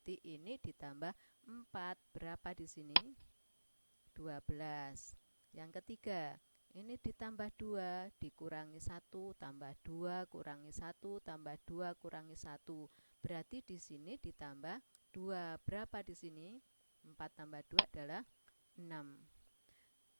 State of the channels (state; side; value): inverted; both; correlation -1.00